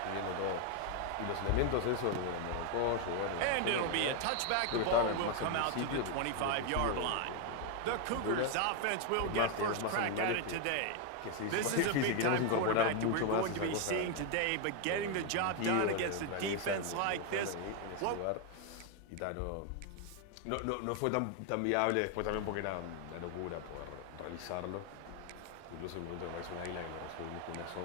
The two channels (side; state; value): both; different; correlation 0.01